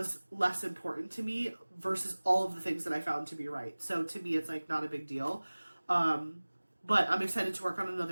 less important to me versus all of the things that I found to be right. So to me, it's like not a big deal. But I'm excited to work on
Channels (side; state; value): both; inverted; correlation -1.00